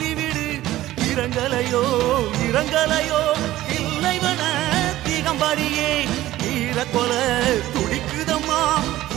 இரங்கலையோ தில்லைவன திகம்பரியே, ஈரக்கொல துடிக்குதம்மா,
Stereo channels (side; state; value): left; quieter; 15.3 dB